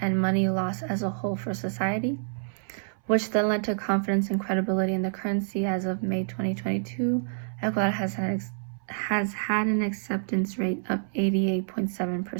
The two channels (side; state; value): left; silent; 60 dB below the other